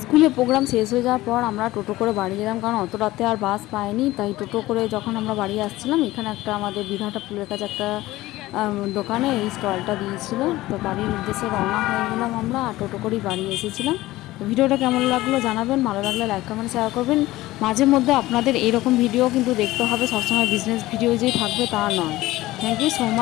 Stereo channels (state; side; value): quieter; right; 17.5 dB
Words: স্কুলে প্রোগ্রাম শেষ হয়ে যাওয়ার পর আমরা টোটো করে বাড়ি গেলাম, কারণ অত রাতে আর বাস পাইনি। তাই টোটো করে যখন আমরা বাড়ি আসছিলাম, এখানে একটা আমাদের বিরাটা পুলের কাছে একটা দোকানে এই স্টলটা দিয়েছিল। তো বাড়ির উদ্দেশ্যে রওনা হয়ে গেলাম আমরা, আর টোটো করেই বাড়ি এসেছিলাম। তো ভিডিওটা কেমন লাগলো জানাবেন। ভালো লাগলে লাইক কমেন্ট শেয়ার করবেন। মাঝে মধ্যে আপনাদের এরকম ভিডিও কিন্তু দেখতে হবে, সবসময় বিজনেস ভিডিও যেই থাকবে তা নয়। Thank you so